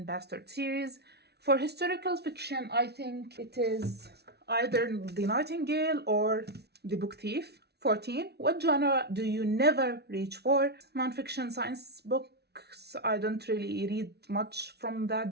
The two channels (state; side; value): late; left; 0.48 ms